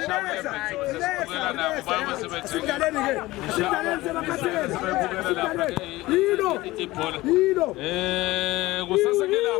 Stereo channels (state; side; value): quieter; right; 18.8 dB